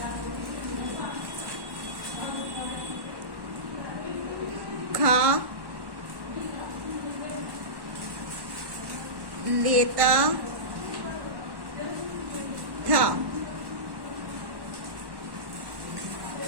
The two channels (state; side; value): late; left; 1.1 ms